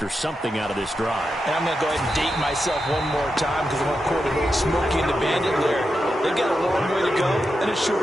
something out of this drive. And I'm going to go ahead and date myself one more time because I want to quote a little Smokey and the Bandit there. They've got a long way to go and a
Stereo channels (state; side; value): normal; both; correlation 0.88